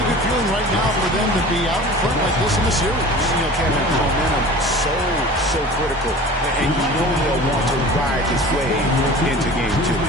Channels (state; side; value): normal; both; correlation 0.40